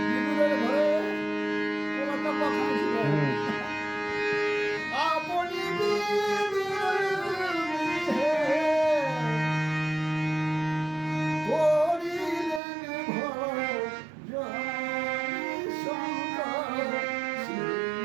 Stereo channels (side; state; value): left; drops out; at 12.6 s